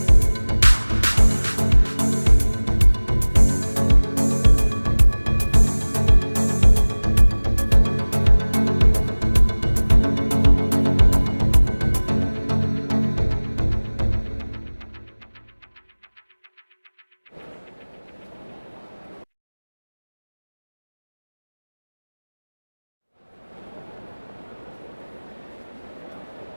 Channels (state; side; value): inverted; both; correlation -1.00